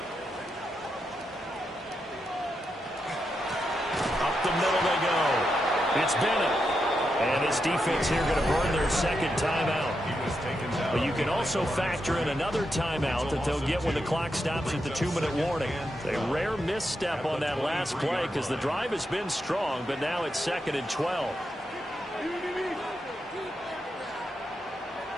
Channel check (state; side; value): normal; both; correlation 0.85